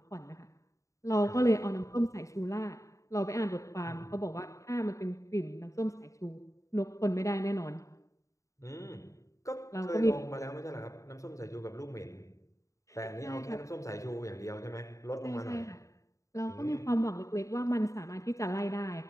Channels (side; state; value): right; late; 0.15 ms